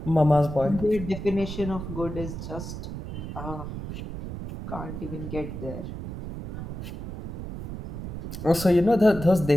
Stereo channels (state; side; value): noise; right; rumble, 8 dB below the sound